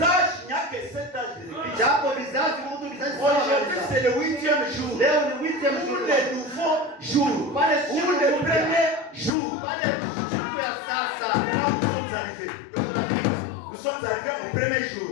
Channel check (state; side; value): drops out; right; at 9.3 s